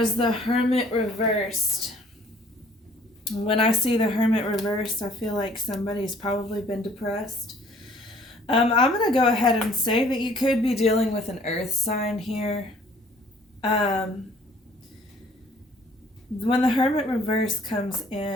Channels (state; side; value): normal; both; correlation 0.57